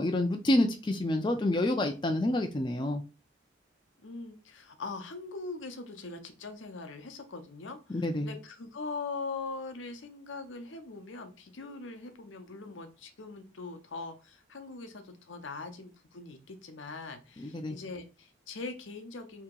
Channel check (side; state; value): both; normal; correlation 0.66